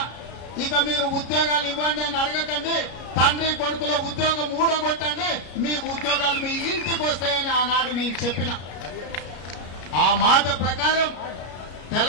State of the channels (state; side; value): late; right; 33 ms